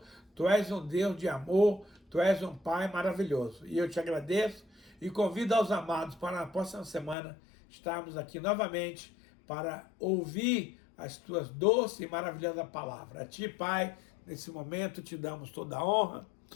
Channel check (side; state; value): right; drops out; at 7.2 s